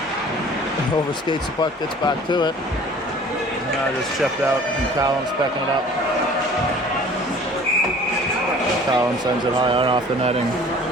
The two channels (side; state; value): both; normal; correlation 0.48